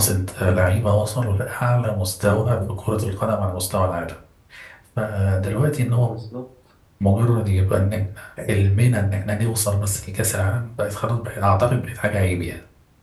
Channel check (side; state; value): both; identical; correlation 1.00